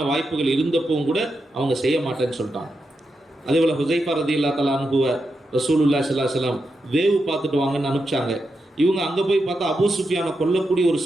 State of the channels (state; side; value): normal; both; correlation 0.86